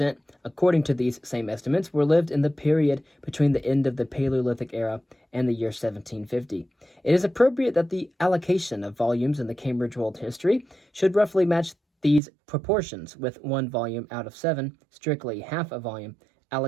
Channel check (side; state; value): left; drops out; at 12.2 s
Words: according to these same estimates, were lived in the period between the end of the Paleolithic era and the year 1750. It is appropriate that the allocation of volumes in the Cambridge World History should roughly match these proportions, with 1 volume out of 7, strictly half a volume,